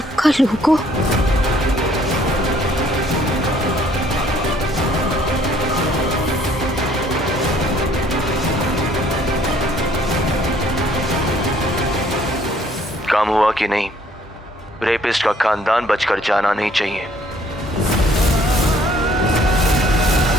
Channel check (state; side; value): normal; both; correlation 0.61